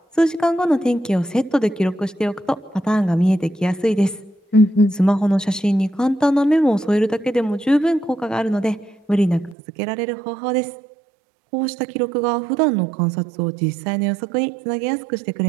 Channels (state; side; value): drops out; left; at 9.6 s